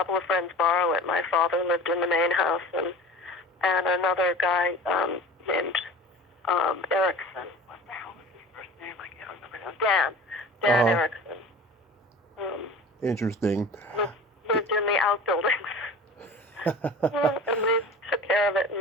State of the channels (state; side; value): normal; both; correlation 0.39